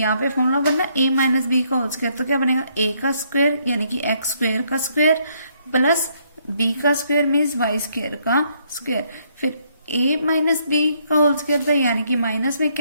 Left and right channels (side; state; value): both; inverted; correlation -0.70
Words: पे फॉर्मूला बनना A - B का होल स्क्वायर, तो क्या बनेगा A का स्क्वायर यानी कि x² का स्क्वायर प्लस B का स्क्वायर मीन्स y² का स्क्वायर, फिर A - B का होल स्क्वायर था यानी कि माइनस में